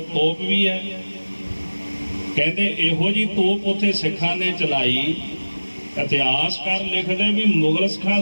ਤੋਪ ਵੀ ਹੈ। ਕਹਿੰਦੇ ਇਹੋ ਜੀ ਤੋਪ ਉੱਥੇ ਸਿੱਖਾਂ ਨੇ ਚਲਾਈ। ਇਤਿਹਾਸਕਾਰ ਲਿਖਦੇ ਵੀ ਮੁਗਲ ਸਿੱਖਾਂ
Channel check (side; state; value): both; inverted; correlation -1.00